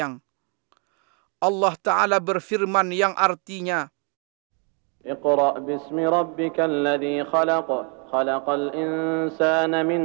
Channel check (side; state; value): left; quieter; 37.3 dB